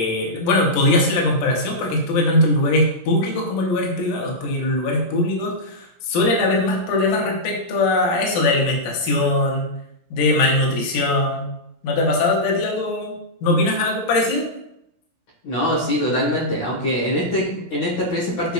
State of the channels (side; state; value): right; late; 17 ms